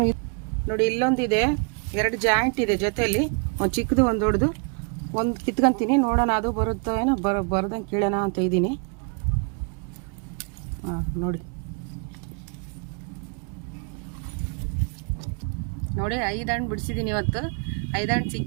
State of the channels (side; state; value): left; quieter; 36.6 dB